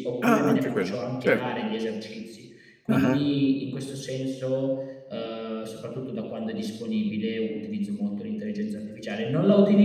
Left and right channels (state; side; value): identical; both; correlation 1.00